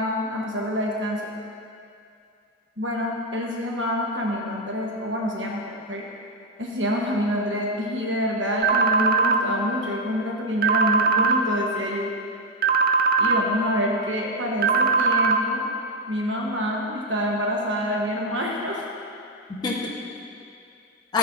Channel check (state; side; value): normal; both; correlation 0.03